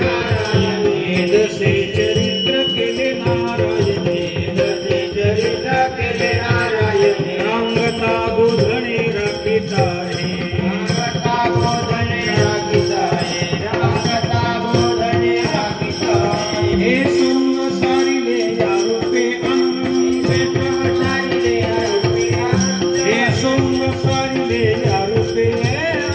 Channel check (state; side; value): identical; both; correlation 1.00